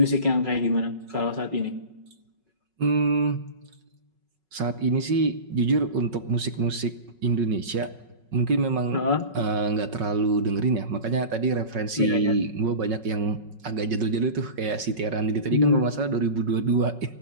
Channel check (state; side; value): late; left; 5.4 ms